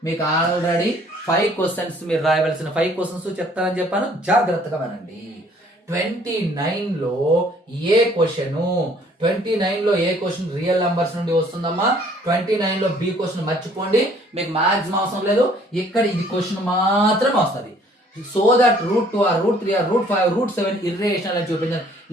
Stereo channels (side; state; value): both; normal; correlation 0.59